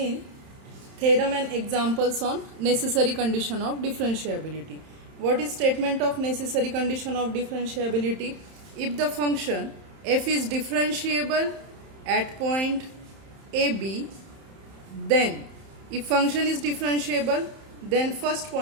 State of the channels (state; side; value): late; left; 31 ms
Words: theorem and examples on necessary condition of differentiability. What is statement of necessary condition of differentiability? If the function f is differentiable at point AB, then if function is differentiable, then first